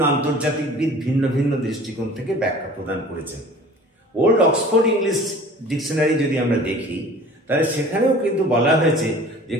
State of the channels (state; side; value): normal; both; correlation 0.45